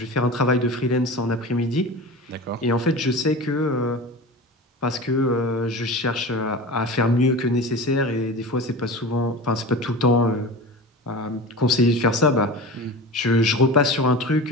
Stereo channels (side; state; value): both; normal; correlation 0.32